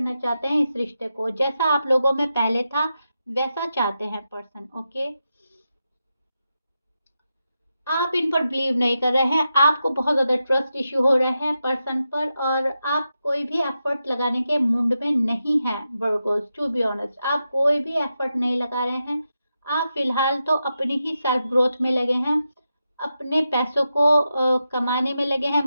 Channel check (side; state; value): both; inverted; correlation -0.88